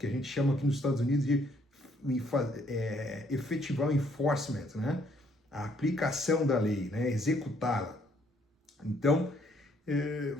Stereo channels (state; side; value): normal; both; correlation 0.67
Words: a gente chama aqui nos Estados Unidos de efetivar o enforcement, né? A aplicação da lei, né? Executá-la. Então,